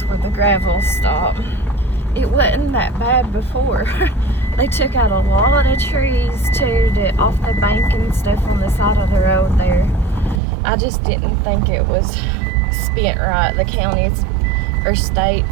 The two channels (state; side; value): drops out; left; at 10.4 s